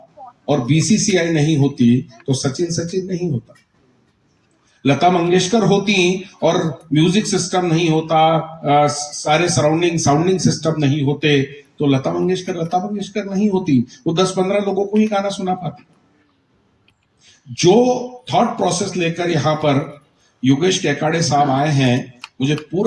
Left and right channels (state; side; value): identical; both; correlation 1.00